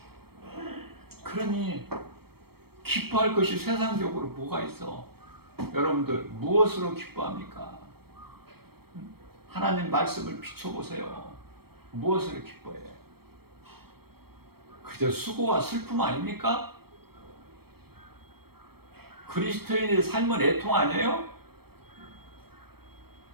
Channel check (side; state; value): left; late; 0.96 ms